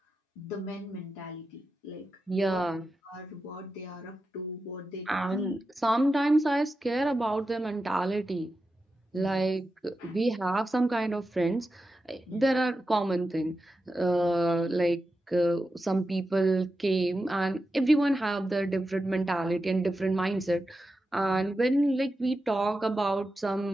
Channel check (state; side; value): normal; both; correlation 0.90